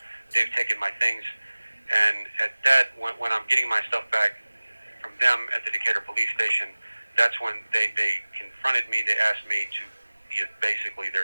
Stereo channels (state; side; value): inverted; both; correlation -1.00